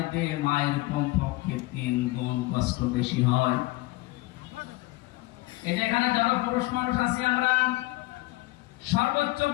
মায়ের কমপক্ষে 3 গুণ কষ্ট বেশি হয়। এখানে যত পুরুষ মানুষ আছে আমরা, সর্বোচ্চ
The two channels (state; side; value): quieter; right; 20.2 dB